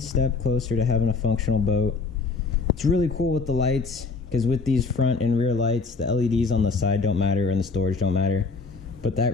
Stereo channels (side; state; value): right; quieter; 4.4 dB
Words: having a functional boat. It's really cool with the lights, because with these front and rear lights, the LEDs on the side don't matter and the storage don't matter. But that